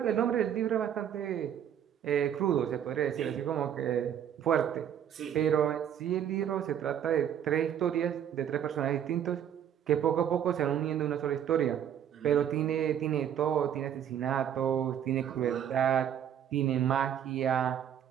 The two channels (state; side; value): quieter; left; 9.6 dB